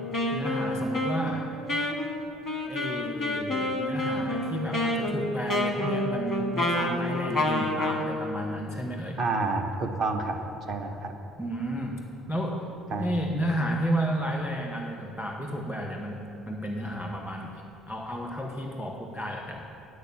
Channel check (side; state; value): right; noise; rumble, 30 dB below the sound